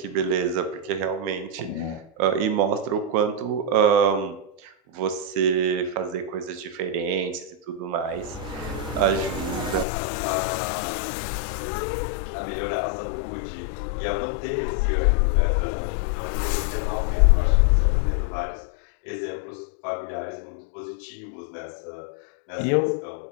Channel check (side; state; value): right; drops out; at 9.9 s